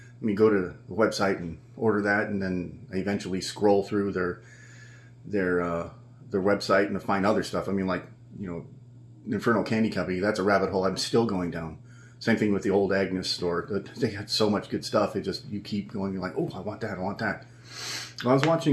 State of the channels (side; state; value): both; identical; correlation 1.00